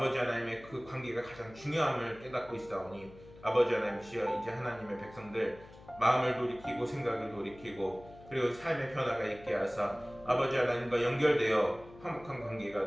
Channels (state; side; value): noise; left; hum, 20 dB below the sound